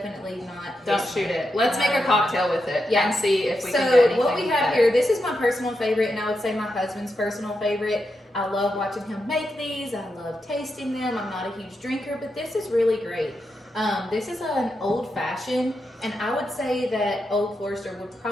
not. Don't this shoot one. it. Let's make a cocktail with it, Yeah. and see if we So can get anything what we have better. here, this is my personal favorite, and I would say my husband's personal favorite. I love watching him make these. I love tasting them. I'm not a huge drinker, but this is really great. This is an old fashioned, and I would say that Old Forester would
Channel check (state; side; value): normal; both; correlation 0.86